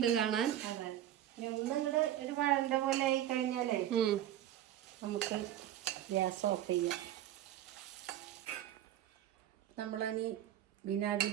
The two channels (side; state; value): left; quieter; 12.0 dB